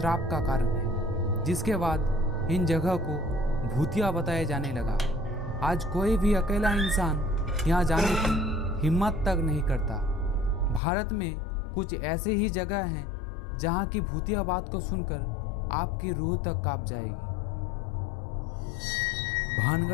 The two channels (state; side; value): drops out; right; at 10.8 s